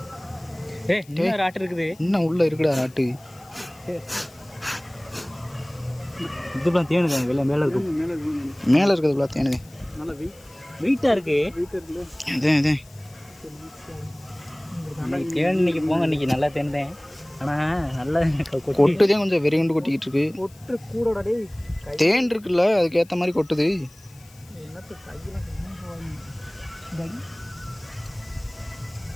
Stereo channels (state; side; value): noise; left; hiss, 26 dB below the sound